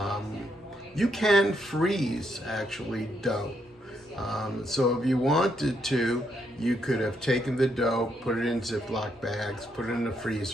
You can freeze actually dough. So if you wanted to, you could have taken the dough, put it in Ziploc bags, put it in the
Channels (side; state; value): both; normal; correlation 0.77